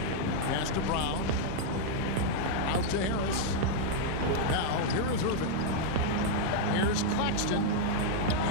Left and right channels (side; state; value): both; different; correlation -0.01